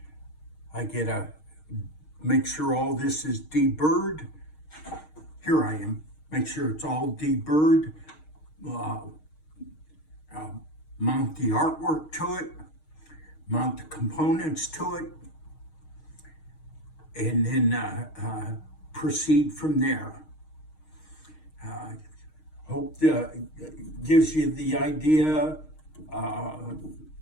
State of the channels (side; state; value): right; late; 6.4 ms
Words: get to make sure all this is deburred. Here I am. Make sure it's all deburred. Mount the artwork to it, mount the components to it, and then proceed from there. Hope that gives you the idea